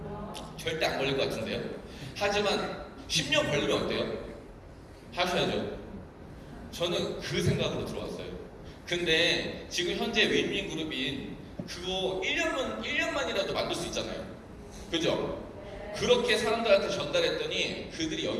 절대 안 걸릴 것 같은데요. 하지만 10년 걸리면 어때요? 하셔야죠. 저는 그 생각으로 들어왔어요. 근데 지금 현재 윈윈그룹인 그거 1년만이라도 만들 수 있잖아요. 그죠? 그렇게 사람들한테 전달했더니 그들이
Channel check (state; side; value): identical; both; correlation 1.00